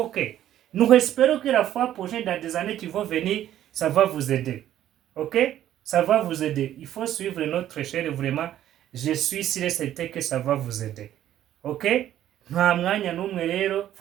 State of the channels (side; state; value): left; quieter; 12.0 dB